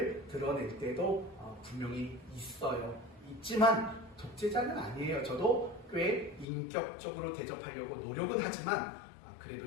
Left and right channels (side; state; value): right; drops out; at 6.5 s